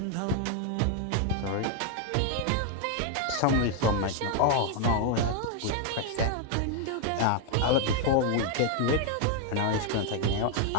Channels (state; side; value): different; both; correlation 0.00